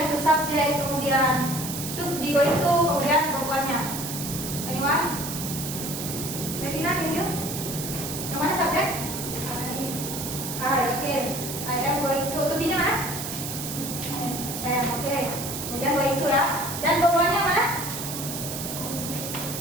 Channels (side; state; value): right; noise; hiss, 6 dB below the sound